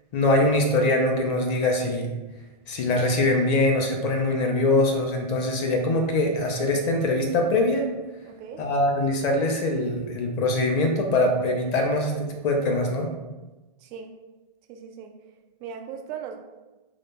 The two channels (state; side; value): late; right; 1.9 ms